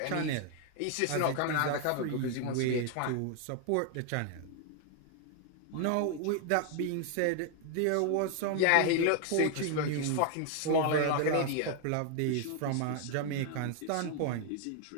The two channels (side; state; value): both; different; correlation 0.00